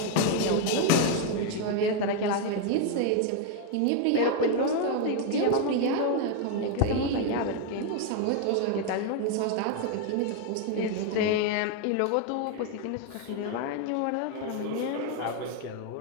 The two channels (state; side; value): different; both; correlation 0.01